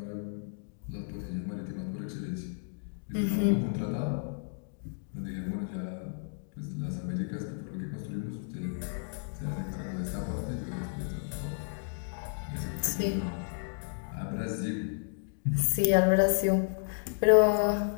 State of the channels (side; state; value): right; silent; digital silence